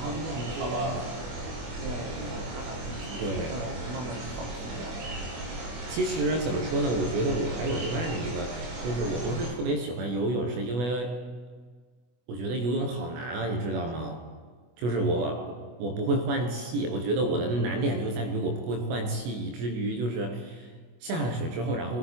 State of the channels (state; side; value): late; left; 25 ms